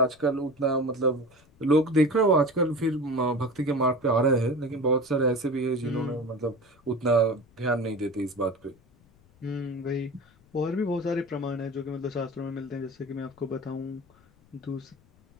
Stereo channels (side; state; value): left; noise; rumble, 30 dB below the sound